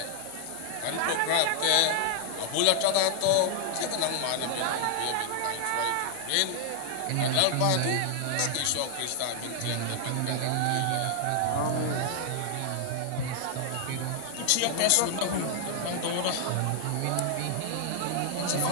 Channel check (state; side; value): different; both; correlation 0.00